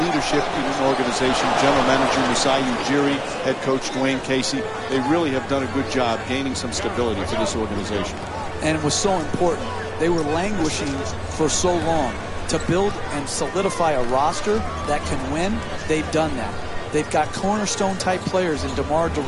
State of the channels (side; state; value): both; identical; correlation 1.00